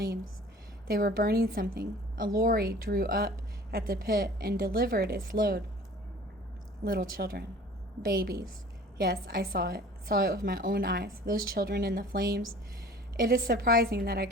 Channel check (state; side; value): normal; both; correlation 0.46